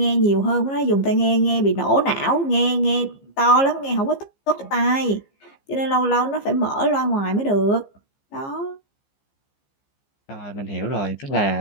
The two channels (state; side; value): late; right; 15 ms